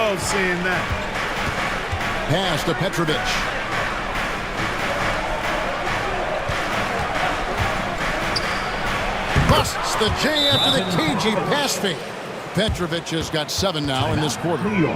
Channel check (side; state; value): both; identical; correlation 1.00